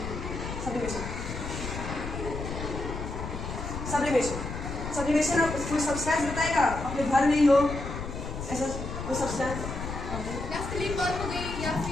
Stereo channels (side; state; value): left; noise; rumble, 6 dB below the sound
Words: sublimation. Sublimation आप कोई सब्सटेंस बताएगा अपने घर में ही हो ऐसा कोई सब्सटेंस? नैफ्थलीन बॉल हो गई या